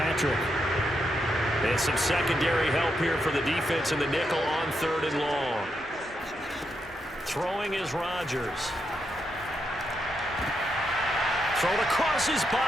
And some secondary help here for the defense in the nickel on 3rd and long. Throwing is Rodgers. Thrown across his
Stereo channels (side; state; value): both; normal; correlation 0.82